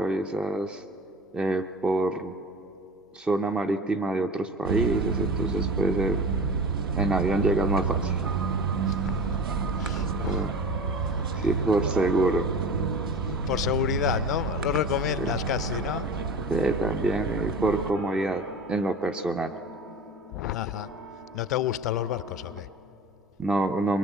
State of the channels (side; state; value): both; normal; correlation 0.35